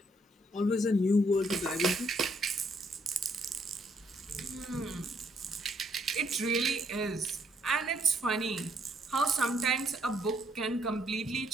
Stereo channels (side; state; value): both; normal; correlation 0.71